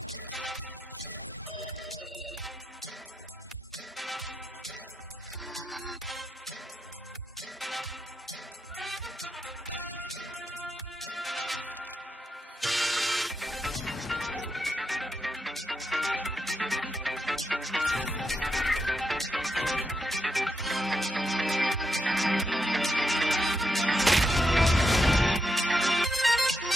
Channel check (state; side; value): normal; both; correlation 0.83